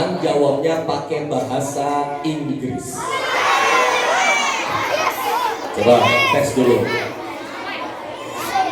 jawabnya pakai bahasa Inggris. Coba tes dulu.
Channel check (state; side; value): identical; both; correlation 1.00